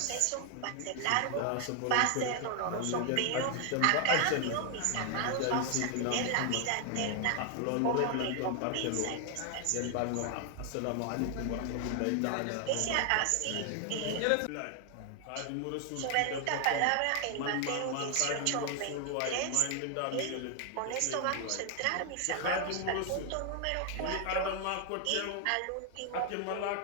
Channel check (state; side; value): different; both; correlation 0.00